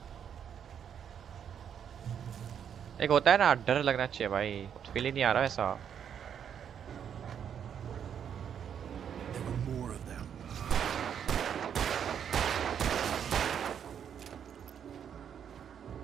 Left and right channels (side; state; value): left; quieter; 8.4 dB